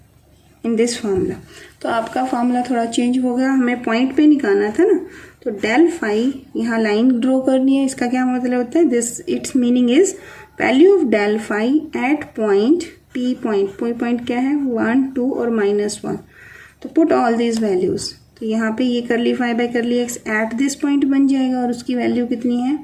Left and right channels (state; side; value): identical; both; correlation 1.00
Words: in this formula. तो आपका फार्मूला थोड़ा चेंज हो गया, हमें पॉइंट पे निकालना था ना। तो डेल फाई, यहाँ लाइन ड्रॉ करनी है, इसका क्या मतलब होता है? This its meaning is value of del phi at point P. Point क्या है? 1, 2 और -1। तो पुट ऑल दीज वैल्यूज। तो यहाँ पे ये curly phi by curly X at this point बन जाएगा और उसकी वैल्यू कितनी है?